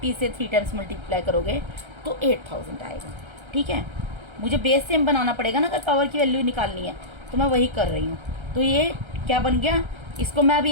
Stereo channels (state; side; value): late; left; 1.3 ms